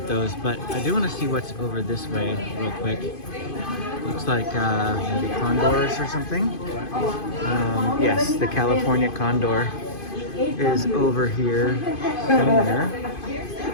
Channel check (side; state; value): right; late; 2.5 ms